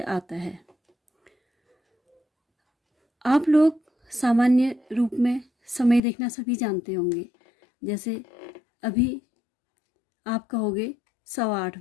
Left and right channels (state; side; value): drops out; right; at 6.0 s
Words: आता है। आप लोग सामान्य रूप में समय देखना सभी जानते होंगे। जैसे अभी आप कहोगे 8:15